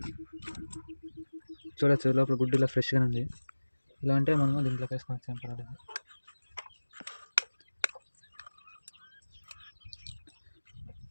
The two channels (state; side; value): inverted; both; correlation -1.00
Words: చూడొచ్చు, లోపల గుడ్డు ఇలా ఫ్రెష్గానే ఉంది. ఇలా అంటే మనము దీంట్లో వేసుకోవచ్చు, ఏం పర్వాలేదు.